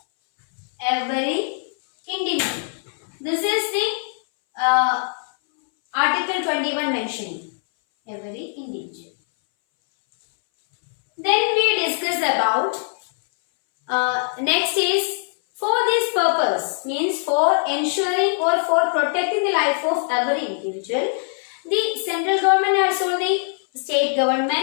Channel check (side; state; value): right; silent; 62 dB below the other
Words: every individual. This is the article 21 mentioning every individual. Then we discuss about next is for this purpose, means for ensuring or for protecting the life of every individual, the central government has told the state